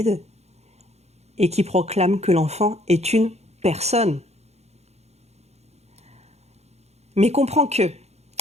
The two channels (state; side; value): late; left; 0.31 ms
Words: et qui proclame que l'enfant est une personne. Mais comprends que,